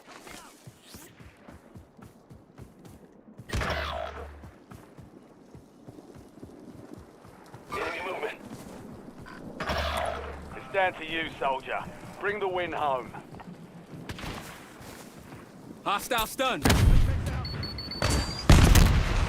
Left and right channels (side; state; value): both; identical; correlation 1.00